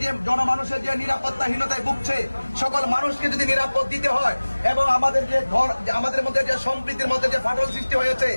যে জনমানুষের যে নিরাপত্তাহীনতায় ভুগছে সকল মানুষকে যদি নিরাপদ দিতে হয় এবং আমাদের মধ্যে যে সম্প্রীতির মধ্যে যে ফাটল সৃষ্টি হয়েছে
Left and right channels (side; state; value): both; inverted; correlation -1.00